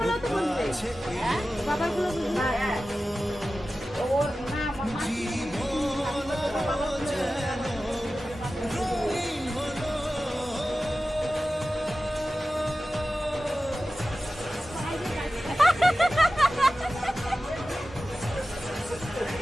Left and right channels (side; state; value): both; normal; correlation 0.95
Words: তো বলবে বাবার গুলো ওর না মামা